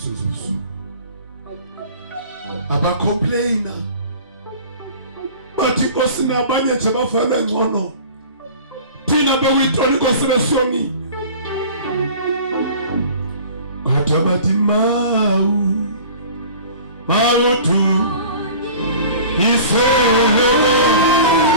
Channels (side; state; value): both; inverted; correlation -0.43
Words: zobusuku abacomplaina bathi Nkosi nabanye nje bafanele ngcono, thina bekuyintoni Nkosi besiyonile. Kodwa bathi mawuthi iselo